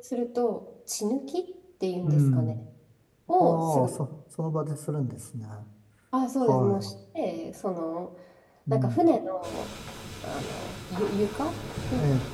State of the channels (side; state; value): both; identical; correlation 1.00